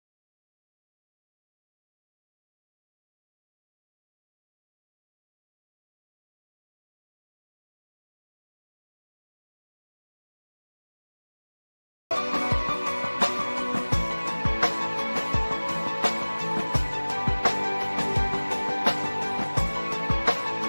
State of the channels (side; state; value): both; inverted; correlation -1.00